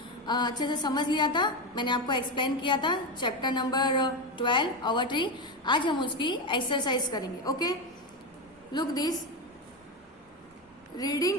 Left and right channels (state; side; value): normal; both; correlation 0.14